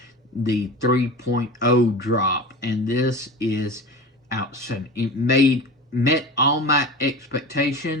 the 3.0 drop, and this is outstanding. It met all my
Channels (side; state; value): both; normal; correlation 0.32